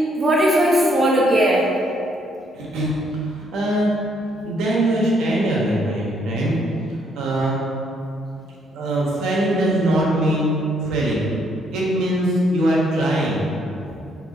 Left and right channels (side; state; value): both; normal; correlation 0.70